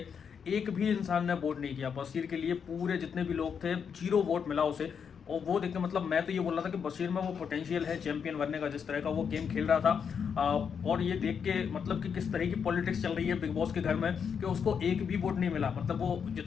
एक भी इंसान ने वोट नहीं किया बशीर के लिए। पूरे जितने भी लोग थे 0 वोट मिला उसे। और वो देख के मतलब मैं तो ये बोल रहा था कि बशीर में वो पोटेंशियल है चैंपियन बनने का, जिस तरह का वो गेम खेल रहा था। और ये देख के मतलब कि किस तरह की पॉलिटिक्स चल रही है बिग बॉस के घर में कि उसको एक भी वोट नहीं मिला। मतलब वो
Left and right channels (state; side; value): quieter; right; 6.9 dB